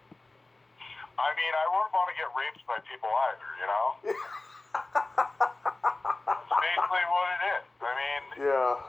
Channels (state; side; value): quieter; right; 3.1 dB